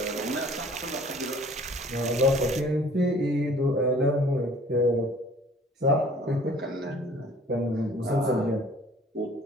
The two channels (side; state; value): both; normal; correlation 0.52